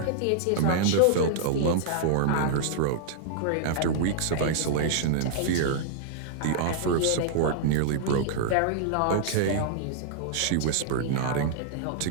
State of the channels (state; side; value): different; both; correlation -0.01